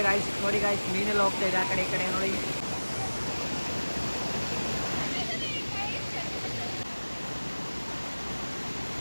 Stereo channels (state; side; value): inverted; both; correlation -1.00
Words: ಗಾಯ್ಸ್ ನೋಡಿ ಗಾಯ್ಸ್. ಮೀನೆಲ್ಲ ಹೋಗ್ತಾ ಇದೆ ಆ ಕಡೆ ಈ ಕಡೆ ನೋಡಿ.